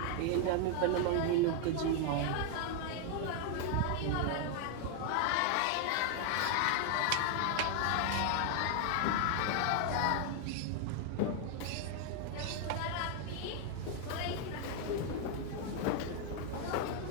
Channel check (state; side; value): different; both; correlation 0.00